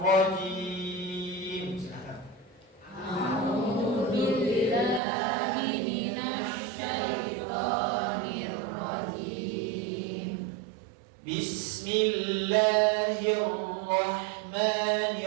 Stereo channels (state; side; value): drops out; left; at 5.0 s